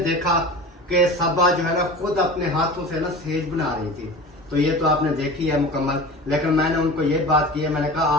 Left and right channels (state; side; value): normal; both; correlation 0.35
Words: देखा कि सबा जो है ना खुद अपने हाथों से ना सेज बना रही थी, तो ये तो आपने देखी है मुकम्मल। लेकिन मैंने उनको ये बात की है, मैंने कहा